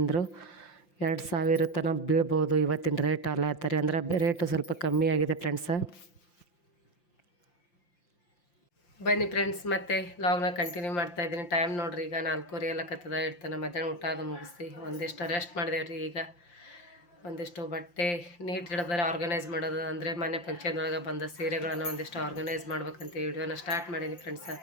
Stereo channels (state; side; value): late; right; 5.8 ms